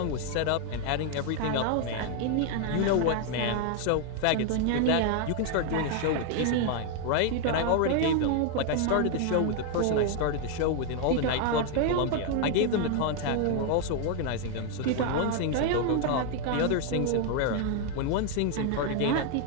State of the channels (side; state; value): both; different; correlation 0.00